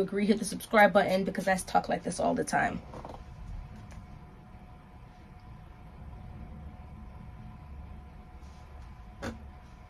agree. Hit the subscribe button, because I talk like this all the time.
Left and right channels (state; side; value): identical; both; correlation 1.00